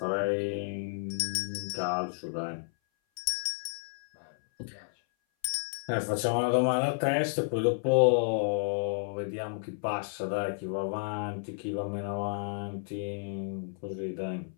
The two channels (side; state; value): right; silent; 56 dB below the other